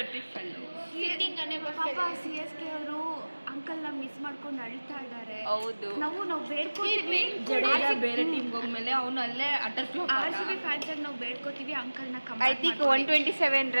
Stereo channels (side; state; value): both; inverted; correlation -1.00